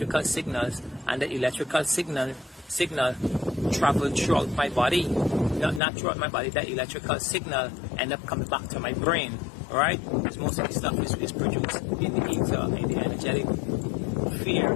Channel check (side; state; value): right; drops out; at 5.8 s